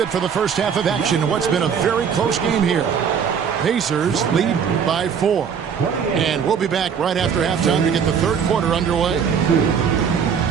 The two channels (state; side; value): quieter; left; 7.1 dB